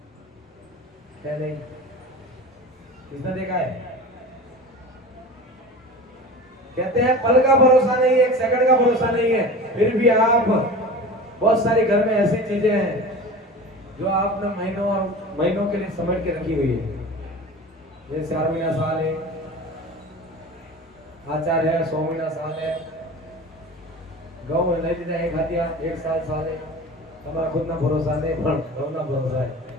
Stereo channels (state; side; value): normal; both; correlation 0.35